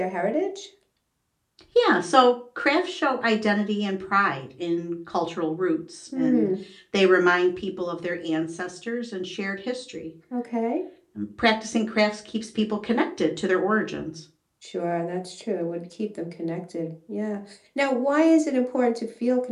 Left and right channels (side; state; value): both; identical; correlation 1.00